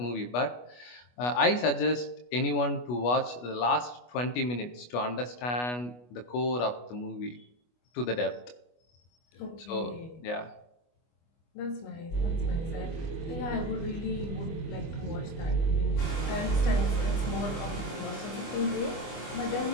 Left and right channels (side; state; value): right; late; 25 ms